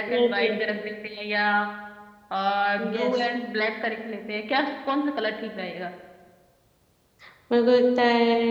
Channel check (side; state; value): both; identical; correlation 1.00